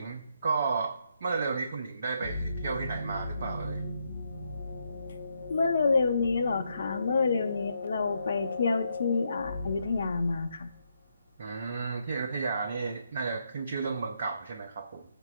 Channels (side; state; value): both; inverted; correlation -0.78